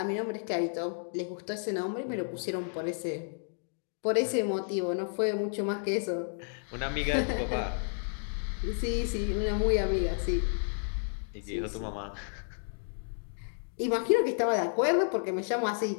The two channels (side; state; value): right; silent; digital silence